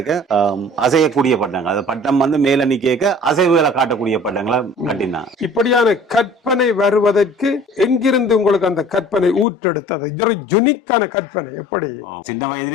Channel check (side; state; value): right; drops out; at 9.5 s